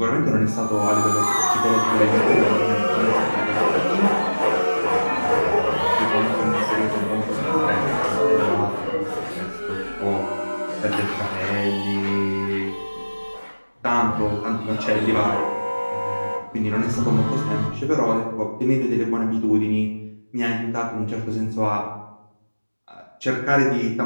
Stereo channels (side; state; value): both; inverted; correlation -1.00